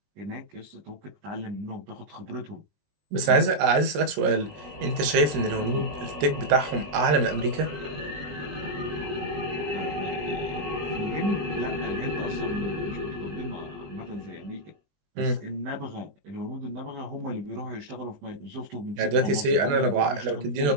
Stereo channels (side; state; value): left; late; 21 ms